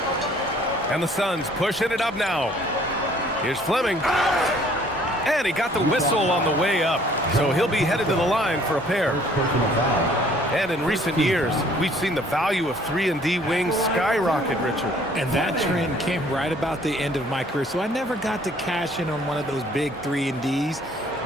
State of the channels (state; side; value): normal; both; correlation 0.58